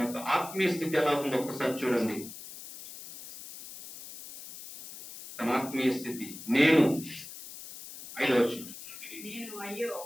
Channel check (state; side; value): noise; left; hiss, 13 dB below the sound